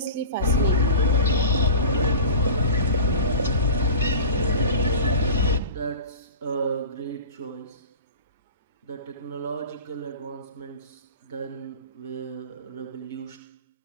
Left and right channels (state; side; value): inverted; both; correlation -0.34